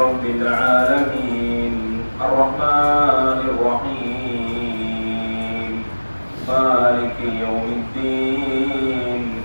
رب العالمين الرحمن الرحيم مالك يوم الدين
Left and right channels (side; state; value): both; inverted; correlation -1.00